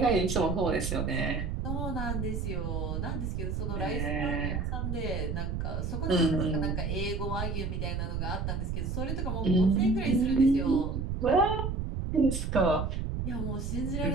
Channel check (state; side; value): noise; right; rumble, 2 dB below the sound